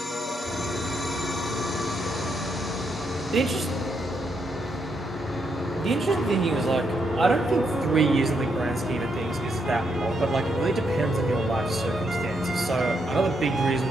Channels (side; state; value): both; normal; correlation 0.78